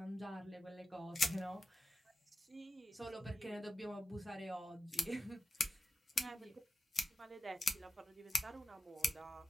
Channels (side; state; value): both; normal; correlation 0.92